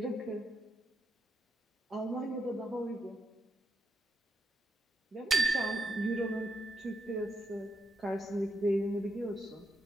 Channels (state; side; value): normal; both; correlation 0.82